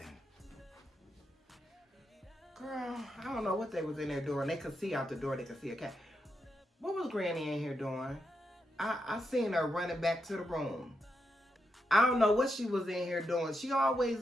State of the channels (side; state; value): both; normal; correlation 0.84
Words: Girl, I don't know what they was in there doing. They could see out the door. They could see a cat. What was Granny in here doing? I seen her running back to the room. I don't know what she was in here doing. She always